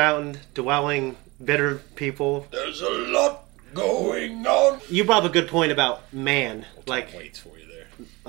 dwelling, bitter people. There's a lot going on. You brought up a good point about man. Waits for you there.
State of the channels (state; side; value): quieter; left; 23.7 dB